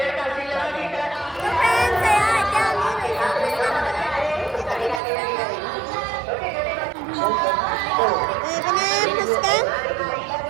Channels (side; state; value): left; drops out; at 5.0 s